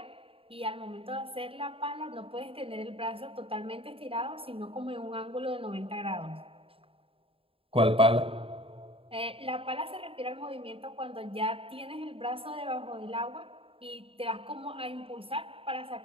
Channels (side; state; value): left; late; 0.27 ms